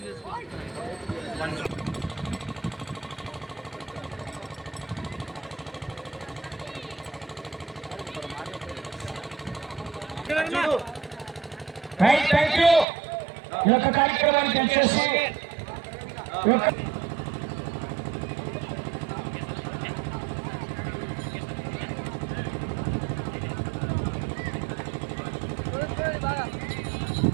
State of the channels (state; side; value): drops out; left; at 12.9 s